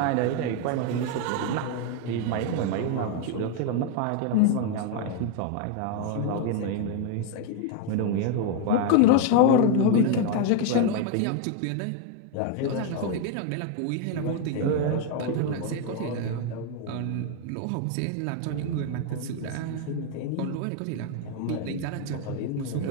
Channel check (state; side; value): different; both; correlation 0.01